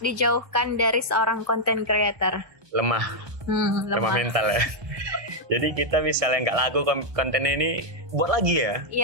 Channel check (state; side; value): late; left; 1.6 ms